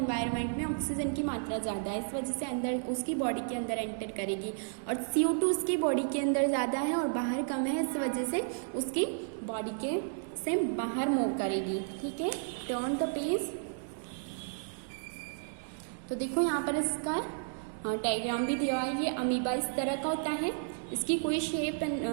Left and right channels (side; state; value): left; silent; digital silence